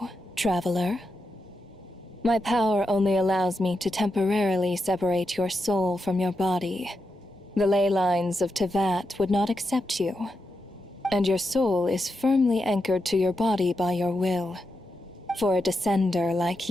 Traveler. My power only allows me to temporarily separate your soul from your body. The ley lines of Tevat would not accept you, and your soul is firmly anchored to your body by your will. For a descender like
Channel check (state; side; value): normal; both; correlation 0.86